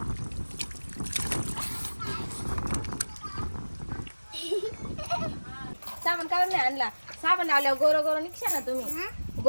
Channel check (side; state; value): both; inverted; correlation -1.00